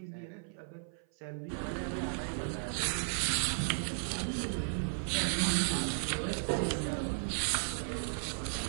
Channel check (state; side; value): silent; left; 54 dB below the other